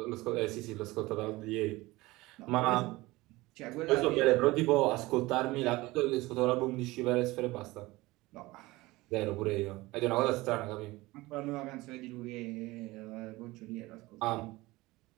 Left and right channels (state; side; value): quieter; left; 20.3 dB